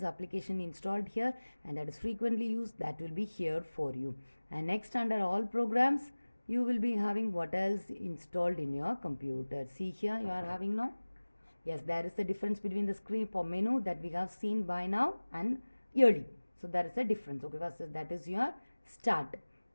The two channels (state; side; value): inverted; both; correlation -1.00